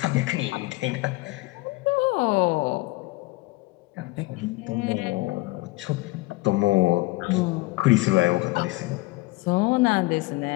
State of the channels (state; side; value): quieter; right; 21.9 dB